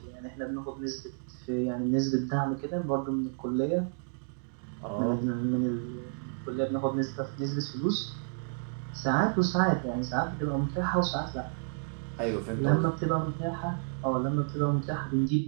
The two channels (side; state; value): left; silent; 57 dB below the other